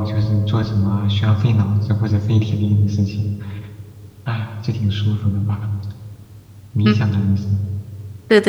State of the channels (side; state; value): both; identical; correlation 1.00